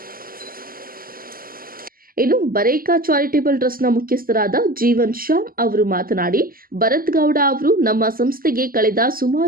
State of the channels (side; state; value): left; late; 0.42 ms